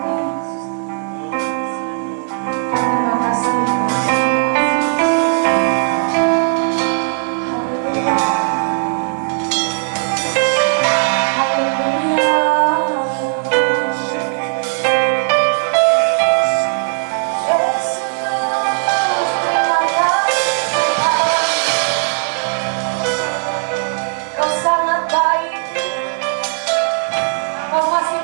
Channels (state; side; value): silent; left; 62 dB below the other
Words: Terima kasih. Kau masih